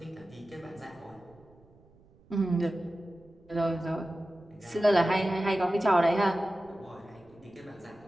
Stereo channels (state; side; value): noise; right; rumble, 28 dB below the sound